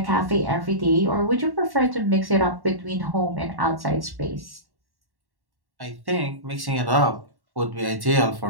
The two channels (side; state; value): left; late; 1.1 ms